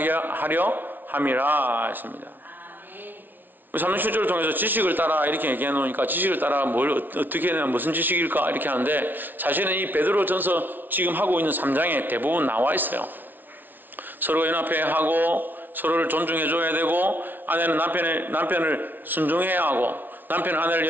하려 함이라 했습니다. 37절을 통해서 지식을 따라 이렇게 얘기해 놓으니까 지식을 따라 뭘 어떻게 해야 무슨 지식일까 이렇게 하는데 사실은 이 베드로전서 지금 하고 있는 3장에 대부분 나와 있어요. 서로 연합해야 하고 서로를 존중해 줘야 되고 아내는 남편을 순종해야 하고 남편은 아내를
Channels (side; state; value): left; late; 0.089 ms